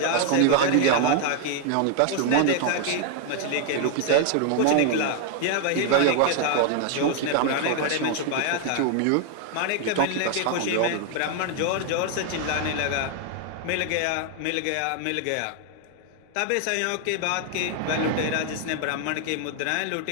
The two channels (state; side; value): different; both; correlation 0.00